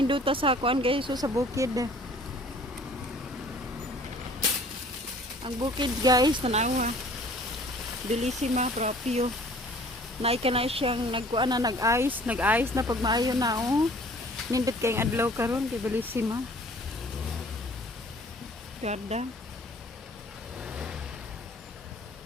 sa kuan guys, so sa bukid. Ang bukid guys, tanawa. Bellissima proprio. Naika na siyang nagkuan na nag-ice na pag maayo na oh. Nindot kayong adlaw karon kay Bellissima. Ganda.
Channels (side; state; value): both; normal; correlation 0.52